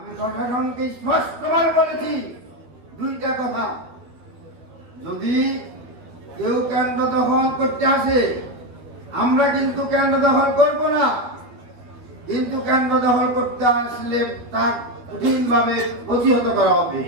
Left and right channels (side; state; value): left; late; 12 ms